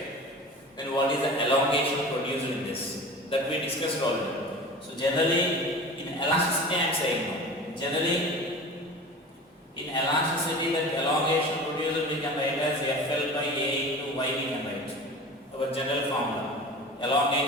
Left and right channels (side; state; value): both; normal; correlation 0.36